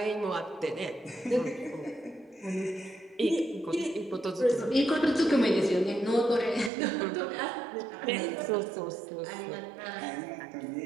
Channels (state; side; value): drops out; left; at 6.7 s